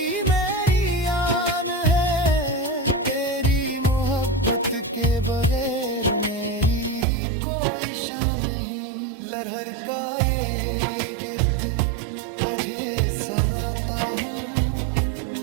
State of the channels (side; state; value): left; drops out; at 7.1 s